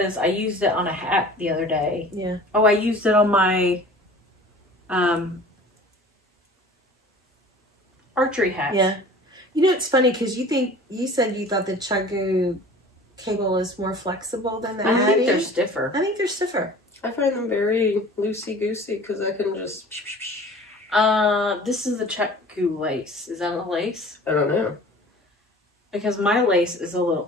I used it on a hat the other day. Yeah. Oh, I used it on my archery hat. Yeah. You know, it's funny because you said you thought the Chiagoo cable is more flexible than the Addie. I think they're stiffer. I think they're stiffer. I find them very loosey-goosey because I can just... This is the Chiagoo lace. Is that a lace? I don't know. Because my lace is a little,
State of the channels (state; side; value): normal; both; correlation 0.44